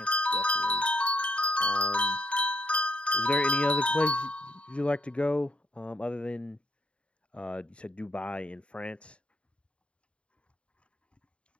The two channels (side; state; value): right; late; 0.058 ms